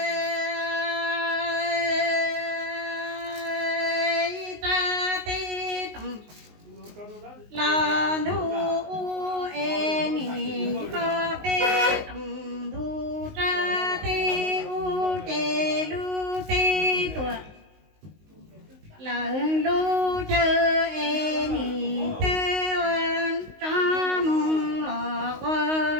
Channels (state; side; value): late; left; 19 ms